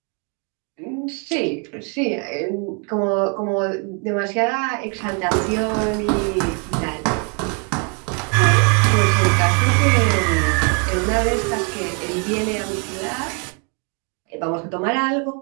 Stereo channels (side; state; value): left; quieter; 37.1 dB